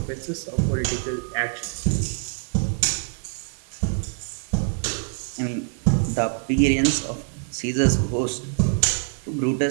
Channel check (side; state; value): left; silent; digital silence